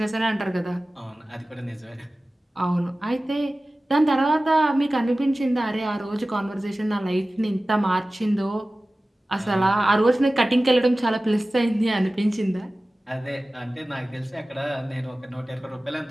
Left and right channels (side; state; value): both; normal; correlation 0.97